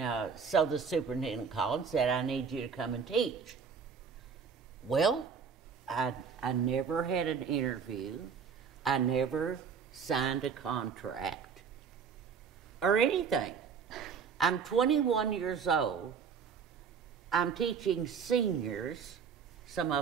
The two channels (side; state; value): left; quieter; 6.4 dB